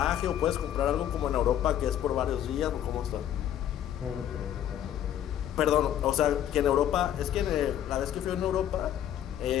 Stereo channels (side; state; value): right; quieter; 10.8 dB